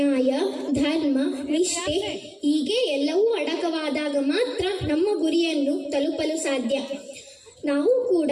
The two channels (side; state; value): both; identical; correlation 1.00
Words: ಧರ್ಮ, ನಿಷ್ಠೆ ಹೀಗೆ ಎಲ್ಲವೂ ಅಡಕವಾದಾಗ ಮಾತ್ರ ನಮ್ಮ ಗುರಿಯನ್ನು ತಲುಪಲು ಸಾಧ್ಯ. ನಾವು ಕೂಡ